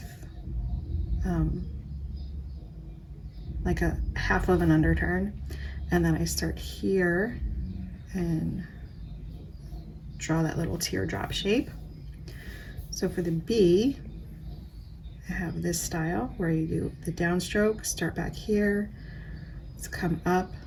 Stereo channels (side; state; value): both; identical; correlation 1.00